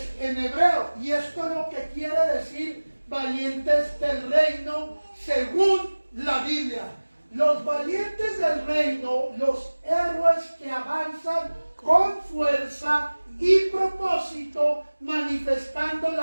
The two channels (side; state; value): both; inverted; correlation -1.00